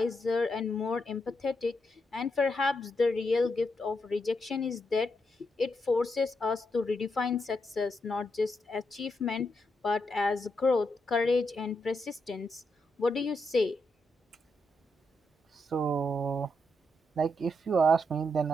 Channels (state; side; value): normal; both; correlation 0.81